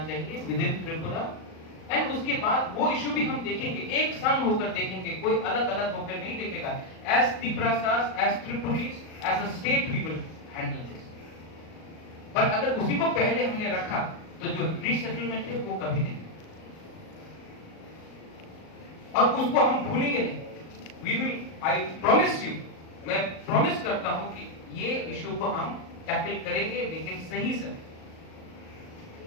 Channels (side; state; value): right; late; 38 ms